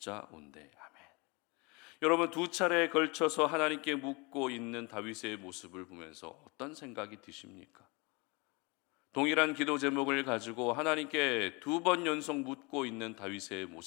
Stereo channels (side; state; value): right; quieter; 28.0 dB